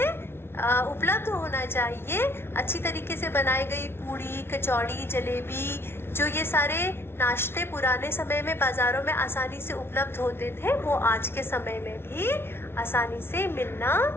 उपलब्ध होना चाहिए। अच्छी तरीके से बनाई गई पूड़ी, कचौड़ी, जलेबी, जो ये सारे नाश्ते पुराने समय में बाजारों में आसानी से उपलब्ध होते थे, वो आज के समय में भी आसानी से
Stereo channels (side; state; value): right; late; 0.12 ms